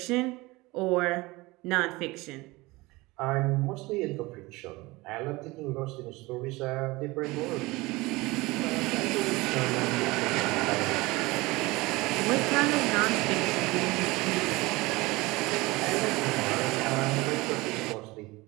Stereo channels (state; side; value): quieter; left; 21.9 dB